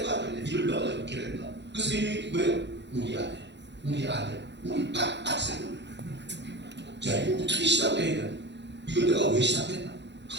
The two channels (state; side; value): late; left; 0.51 ms